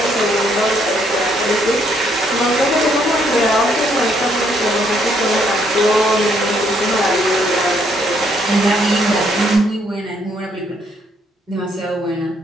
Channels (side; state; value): both; normal; correlation 0.70